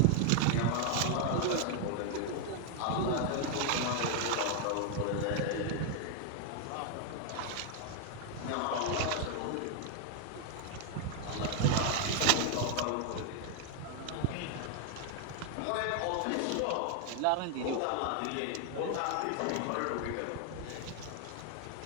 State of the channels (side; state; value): both; different; correlation 0.00